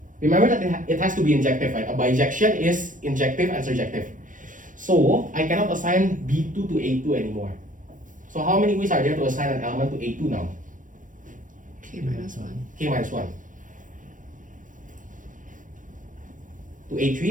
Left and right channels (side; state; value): left; late; 0.38 ms